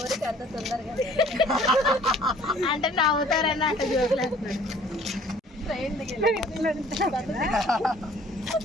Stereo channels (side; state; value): both; normal; correlation 0.54